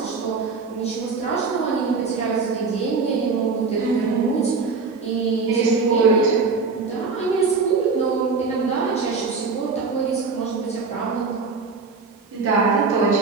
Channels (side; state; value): left; quieter; 4.6 dB